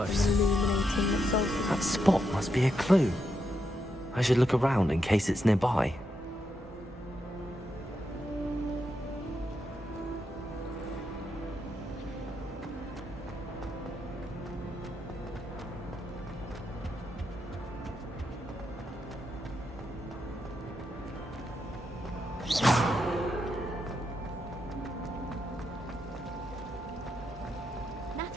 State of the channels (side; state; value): both; normal; correlation 0.82